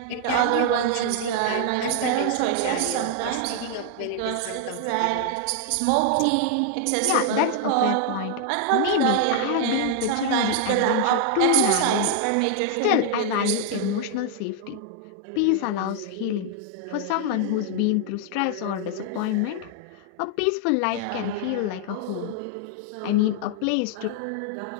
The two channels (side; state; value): both; different; correlation 0.00